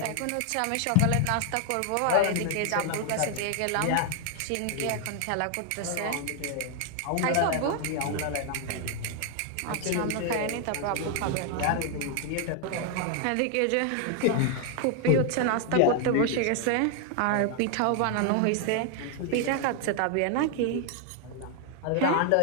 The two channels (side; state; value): both; different; correlation 0.00